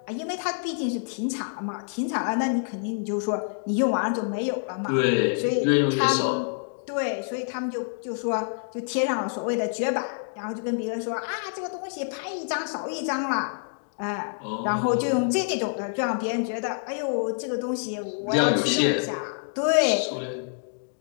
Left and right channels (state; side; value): silent; right; digital silence